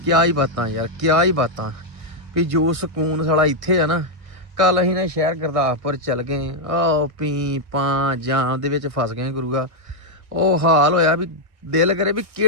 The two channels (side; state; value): left; late; 1.6 ms